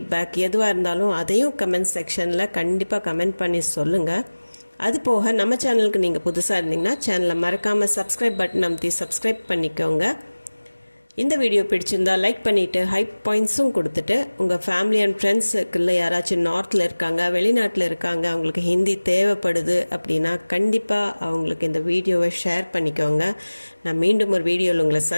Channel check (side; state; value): both; inverted; correlation -1.00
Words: எதுவாக இருந்தாலும் அதையும் கமெண்ட் செக்ஷனில் கண்டிப்பாக கமெண்ட் பண்ணி சொல்லுங்கள். அது போக நம்ம சேனலுக்கு நீங்கள் புதுசாக இருந்தீங்கன்னா சேனலை மறக்காமல் சப்ஸ்கிரைப் பட்டன் அமுத்தி சப்ஸ்கிரைப் பண்ணிக்கோங்க. இந்த வீடியோ பிடிச்சிருந்தா லைக் பண்ணிவிட்டு ஹைப் பாயிண்ட்ஸும் கொடுத்துட்டு உங்கள் ஃபேமிலி அண்ட் ஃப்ரெண்ட்ஸுக்குள்ள யாராச்சும் நார்த்தில் இருக்காங்க, வெளிநாட்டில் இருக்காங்க, அவங்களுக்கு ஹிந்தி தேவைப்படுது அப்படின்னா கண்டிப்பாக அவங்களுக்கு இந்த வீடியோவை ஷேர் பண்ணிக்கோங்க. நான் மீண்டும் ஒரு வீடியோவில் உங்களை